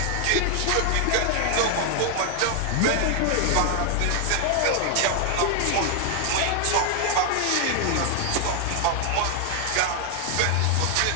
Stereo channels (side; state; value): both; different; correlation 0.00